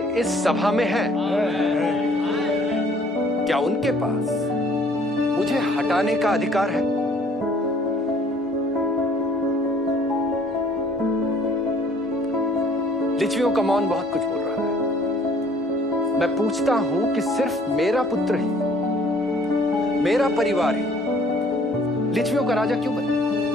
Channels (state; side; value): normal; both; correlation 0.58